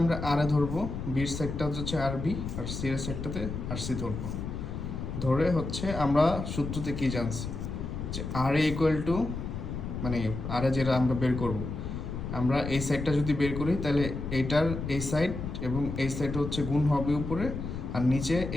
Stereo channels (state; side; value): noise; left; rumble, 5 dB below the sound